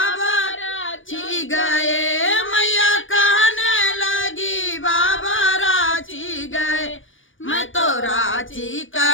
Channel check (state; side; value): late; right; 0.57 ms